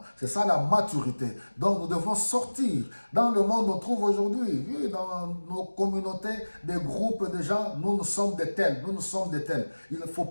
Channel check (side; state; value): both; inverted; correlation -1.00